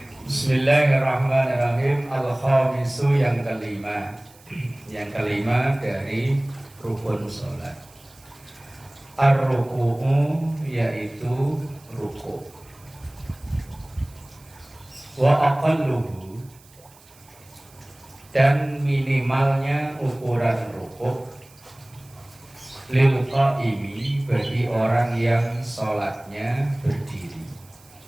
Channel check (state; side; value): noise; right; hiss, 26 dB below the sound